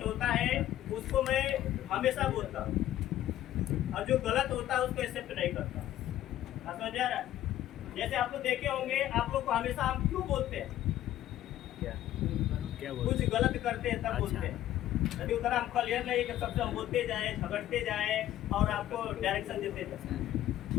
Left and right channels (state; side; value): quieter; right; 13.1 dB